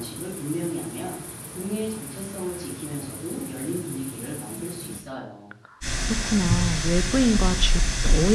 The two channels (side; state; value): both; identical; correlation 1.00